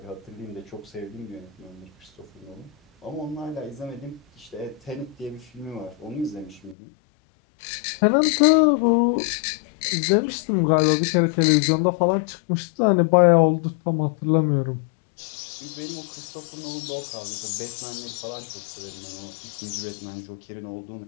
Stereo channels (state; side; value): drops out; right; at 6.8 s